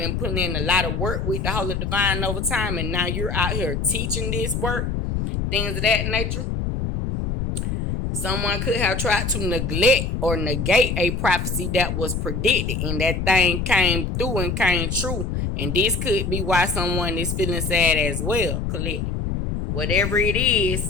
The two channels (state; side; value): noise; left; rumble, 2 dB below the sound